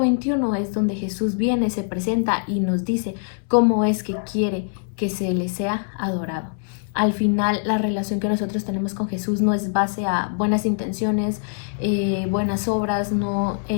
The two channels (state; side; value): silent; right; 63 dB below the other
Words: es donde Jesús viene, se presenta y nos dice cómo es que quiere que se le sea adorado. Al final, la relación que nosotros tenemos con Jesús no es base a buenas intenciones, buenas obras, no